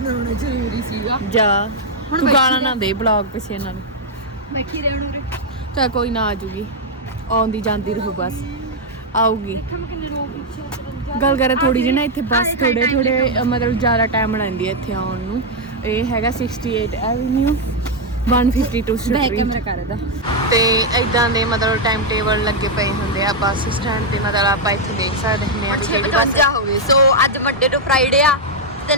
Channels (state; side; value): normal; both; correlation -0.02